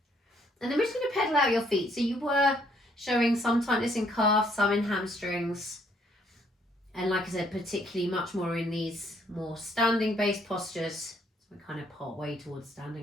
And then we're just going to pedal out your feet. So you were showing some tightness in calves, some in hamstrings. And like I said, particularly much more in these more standing based postures. So we're kind of part way towards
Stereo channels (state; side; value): normal; both; correlation 0.67